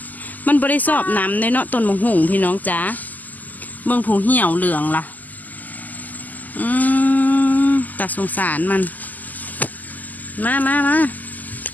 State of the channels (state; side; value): late; right; 0.082 ms